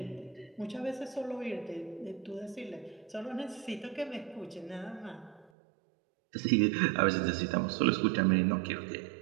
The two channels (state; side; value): drops out; left; at 5.5 s